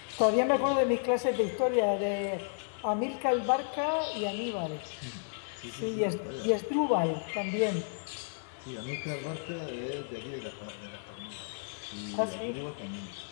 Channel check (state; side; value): silent; right; digital silence